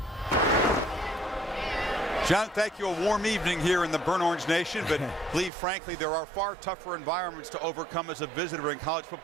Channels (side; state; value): left; drops out; at 5.5 s